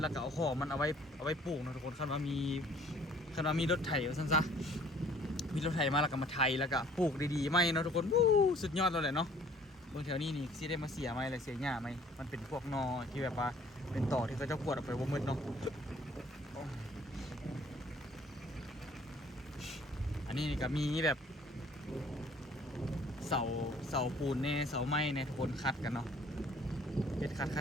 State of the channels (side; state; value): both; normal; correlation 0.56